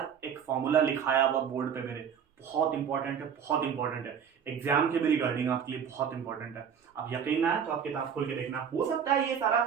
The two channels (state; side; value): quieter; left; 7.6 dB